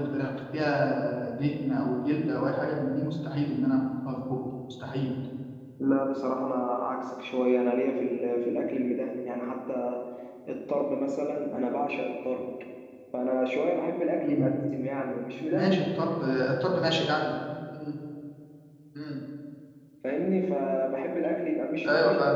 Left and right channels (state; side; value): identical; both; correlation 1.00